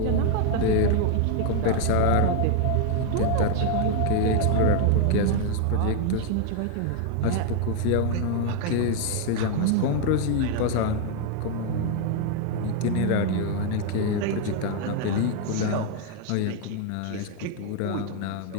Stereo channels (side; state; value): both; different; correlation 0.00